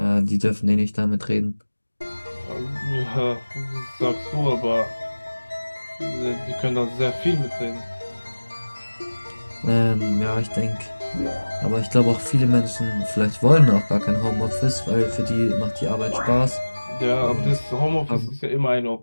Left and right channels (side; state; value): both; inverted; correlation -1.00